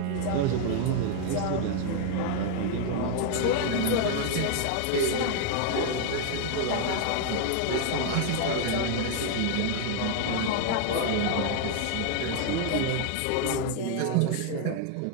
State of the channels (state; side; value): different; both; correlation 0.00